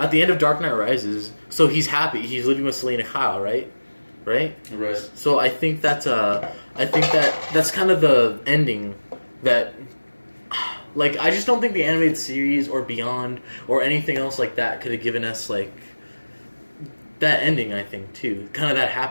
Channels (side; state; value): both; inverted; correlation -1.00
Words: the end of Dark Knight Rises, so he's happy. He's living with Selena Kyle, right? Right. So I think that's kind of the ending that, like, I just don't think the animated series or Beyond or anything else like that could have given us, like, that ending, I think, too. Kind of that